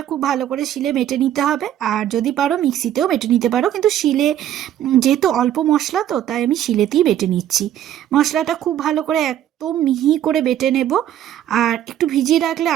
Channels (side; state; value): left; quieter; 11.3 dB